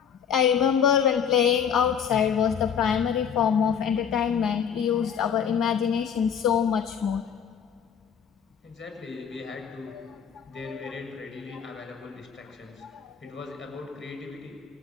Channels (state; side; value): quieter; right; 7.7 dB